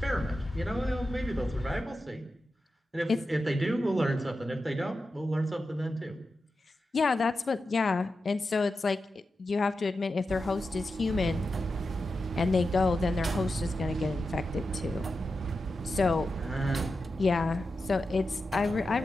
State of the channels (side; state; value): both; normal; correlation 0.90